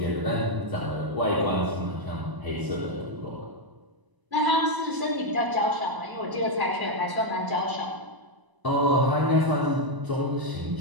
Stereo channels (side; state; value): left; late; 1.0 ms